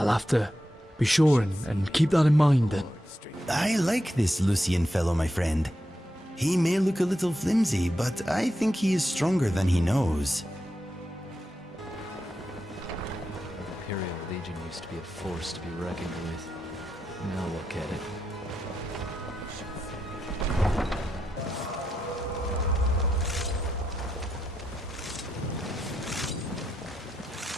have to be sure and keep that in mind then. I like this Lucian fellow, my friend. He may look a little flimsy, but I think he is stronger than he knows. The Imperial Legion used to be a force to be reckoned with. Now look at it.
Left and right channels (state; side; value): normal; both; correlation 0.85